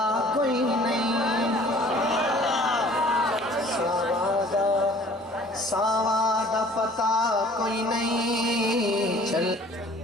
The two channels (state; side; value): normal; both; correlation 0.51